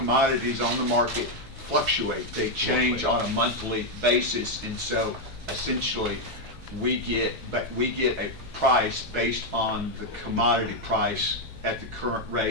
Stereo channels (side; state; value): both; normal; correlation 0.02